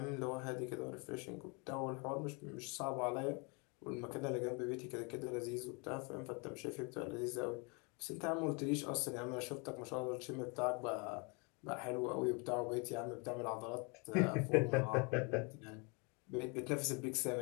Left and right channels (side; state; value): right; quieter; 32.0 dB